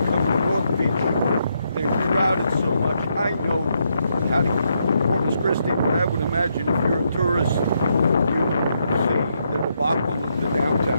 come to North Beach. They're crowded so much. I know how to get to Corpus Christi, but I would imagine if you're a tourist, you see the debacle of the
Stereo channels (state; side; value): inverted; both; correlation -0.78